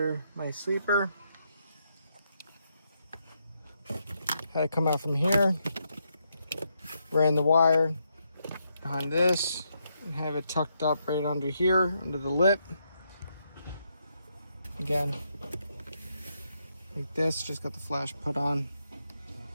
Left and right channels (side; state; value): both; inverted; correlation -0.79